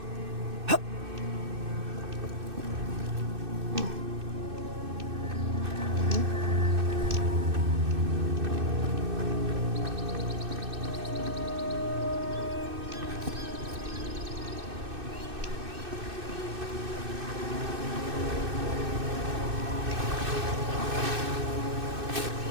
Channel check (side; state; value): left; late; 2.6 ms